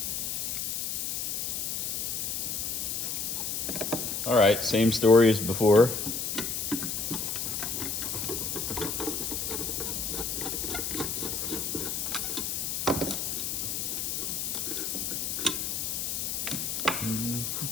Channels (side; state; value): left; noise; hiss, 1 dB below the sound